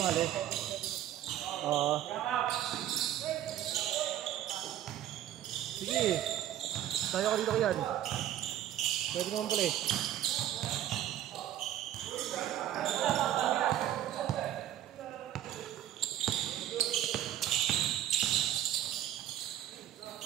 Sige. Tayo ka dito yan. Pwede naman pala eh.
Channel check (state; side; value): quieter; left; 12.1 dB